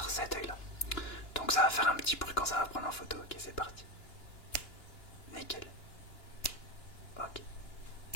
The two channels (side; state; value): right; late; 2.9 ms